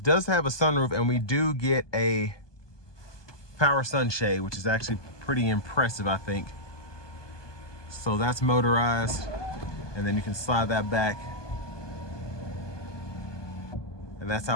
have a sunroof, and we do get a power sunshade, which is actually pretty impressive, I think. So that's motorized, and then you can slide that back. And that's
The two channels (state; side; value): late; right; 1.2 ms